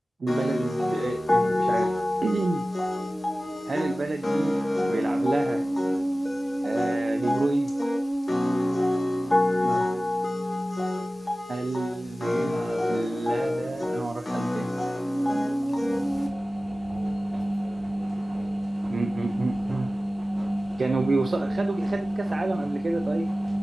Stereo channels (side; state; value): both; normal; correlation 0.96